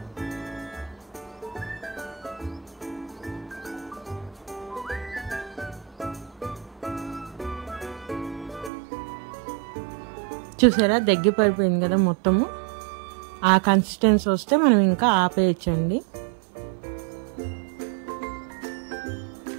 చూసారా, దగ్గర పడిపోయింది కదా మొత్తము. ఆ కన్సిస్టెన్సీ వస్తే మనం ఇంకా ఆపేయచ్చండి.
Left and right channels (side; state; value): left; drops out; at 8.7 s